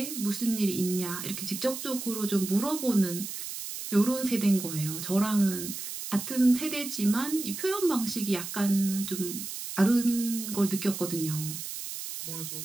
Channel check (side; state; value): right; noise; hiss, 7 dB below the sound